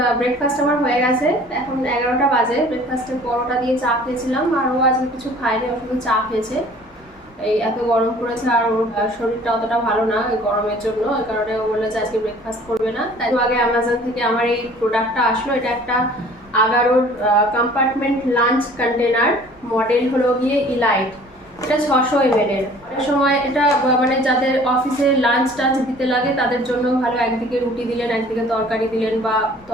ব্রেকফাস্ট আমার হয়ে গেছে। এখন 11টা বাজে। ব্রেকফাস্টে পরোটা দিয়ে চা খেয়েছিলাম, আর ও আজকে কিছু খায়নি, ও শুধু চা খেয়েছে। এই এত গরম পড়েছে, আর ওর শরীরটা অতটা ভালো না এই গরমের জন্য, এই কারণে ও বললো যে আজকে ব্রেকফাস্ট করবে না। তাই আগে অ্যামাজন থেকে আমার এই প্রোডাক্টটা আসলো। এটা একটা আগারোর কম্পার্টমেন্ট লাঞ্চ কন্টেনার, মডেল হলো গিয়ে ইলাইট। এটা 600 ml এর। অনেক সময় এটা মানে যাদের অফিসে লাঞ্চ টাঞ্চ দিতে লাগে তাদের জন্য ভালো। একদিকে রুটি দিলেন, একদিকে তরকারি দিলেন, বা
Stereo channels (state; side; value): normal; both; correlation 0.51